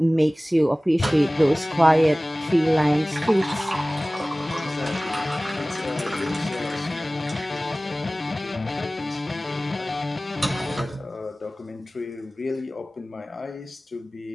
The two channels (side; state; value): both; normal; correlation 0.98